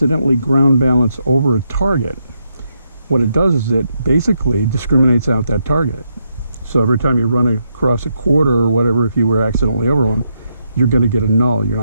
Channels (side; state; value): both; inverted; correlation -0.80